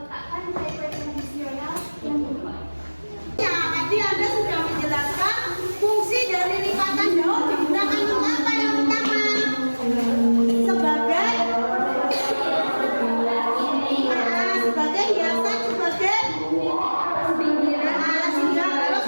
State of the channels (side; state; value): both; inverted; correlation -1.00